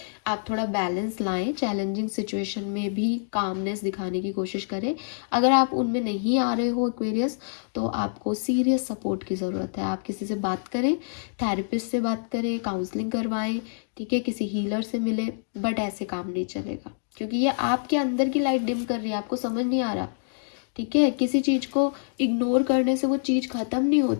आप थोड़ा बैलेंस लाएं, चैलेंजिंग सिचुएशन में भी कामनेस दिखाने की कोशिश करें। अगर आप उनमें नहीं आ रहे हो एक्वेरियस, तो आपको सीरियस सपोर्ट की ज़रूरत है। आप किसी से बात करें, थेरेपिस्ट से बात करें, काउंसलिंग करवाएं, ठीक है, किसी हीलर से मिले, बट ऐसे काम नहीं चलेगा क्योंकि ये आपके अंदर की लाइट डिम कर रही है, आपको समझ नहीं आ रहा। ठीक है, किसी चीज़ को इग्नोर करने से वो चीज़ ख़त्म नहीं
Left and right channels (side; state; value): right; silent; digital silence